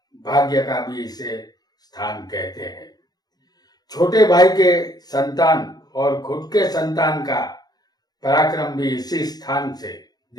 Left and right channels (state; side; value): late; right; 0.19 ms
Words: भाग्य का भी इसे स्थान कहते हैं। छोटे भाई के संतान और खुद के संतान का पराक्रम भी इसी स्थान से